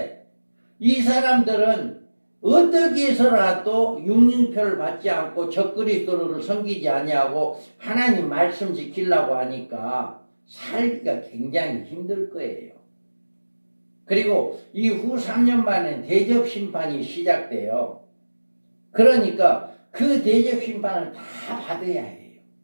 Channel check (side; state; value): both; inverted; correlation -1.00